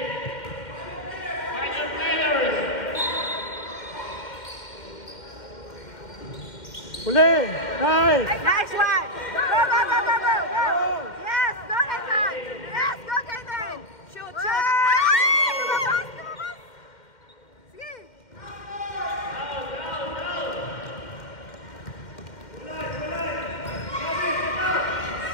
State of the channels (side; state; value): right; late; 2.1 ms